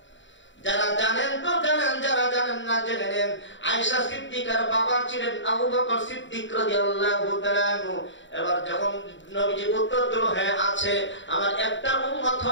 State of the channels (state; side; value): late; right; 0.54 ms